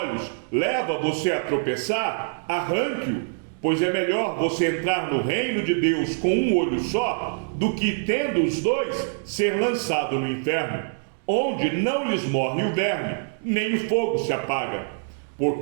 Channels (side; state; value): left; silent; digital silence